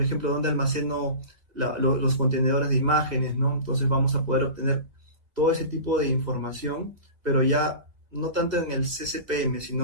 ejemplo, donde almaceno los contenedores de imágenes, ¿no? Entonces vamos a poder obtener todo ese tipo de información, pero ya no tanto en el CCPM,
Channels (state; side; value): late; left; 1.9 ms